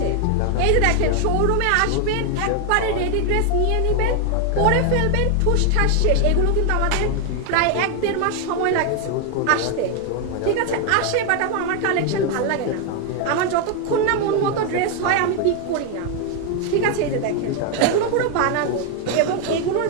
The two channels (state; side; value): different; both; correlation 0.01